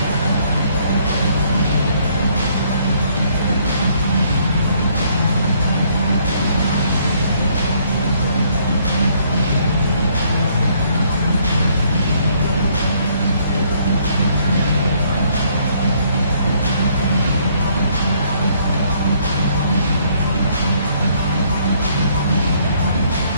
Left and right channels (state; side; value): inverted; both; correlation -0.66